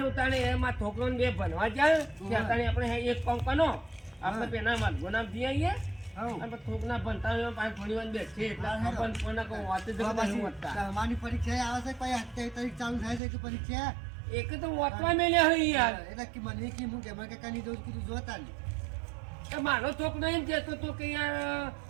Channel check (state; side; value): drops out; left; at 13.2 s